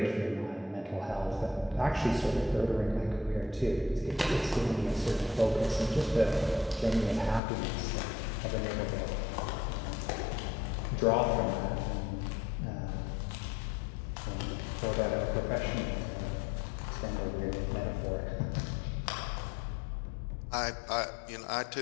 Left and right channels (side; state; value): right; drops out; at 7.4 s